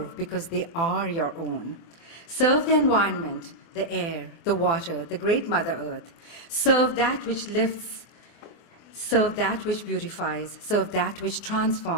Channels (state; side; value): late; right; 24 ms